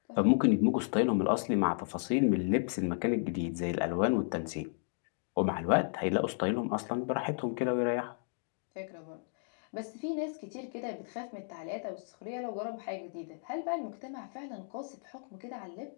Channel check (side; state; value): right; silent; digital silence